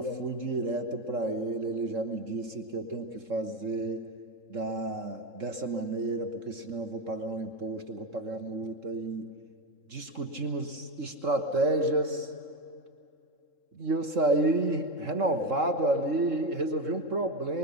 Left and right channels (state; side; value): late; left; 3.7 ms